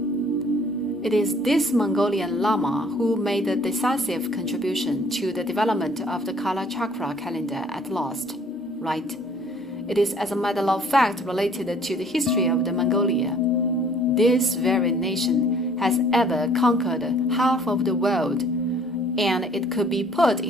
It is this Mongolian Lama who made a decisive contribution to the development of the Kala Chakra calendar at last, right? It is as a matter of fact related to the history of the Mongolia. This very nation has ever conquered half of the world, and it could be put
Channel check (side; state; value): both; normal; correlation 0.56